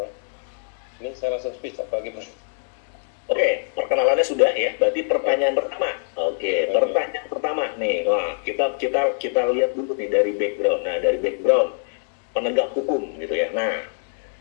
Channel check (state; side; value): silent; right; digital silence